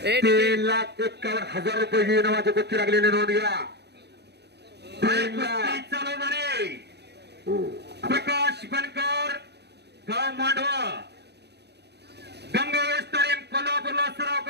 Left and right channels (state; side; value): late; left; 0.49 ms